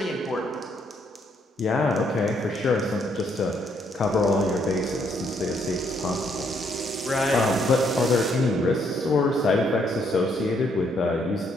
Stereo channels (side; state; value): both; normal; correlation 0.71